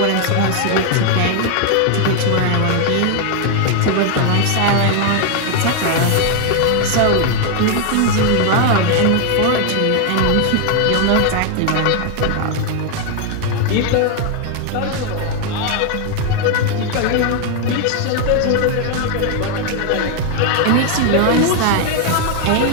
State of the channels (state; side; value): different; both; correlation 0.01